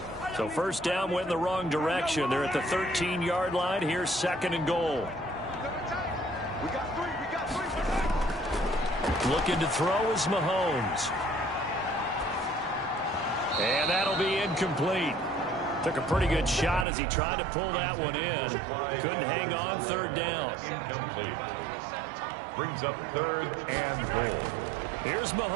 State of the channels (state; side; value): drops out; left; at 16.9 s